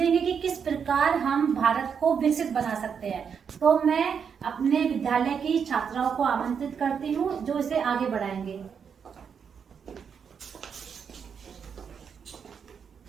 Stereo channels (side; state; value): left; quieter; 6.9 dB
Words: कि किस प्रकार हम भारत को विकसित बना सकते हैं। तो मैं अपने विद्यालय की छात्राओं को आमंत्रित करती हूँ जो इसे आगे बढ़ाएंगे।